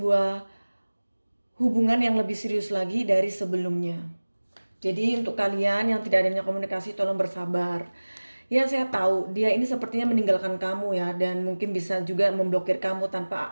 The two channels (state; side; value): inverted; both; correlation -1.00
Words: hubungan yang lebih serius lagi dari sebelumnya. Jadi untuk kalian yang tidak adanya komunikasi tolong bersabar. Ya saya tahu dia ini sepertinya meninggalkan kamu ya dan mungkin bisa juga memblokir kamu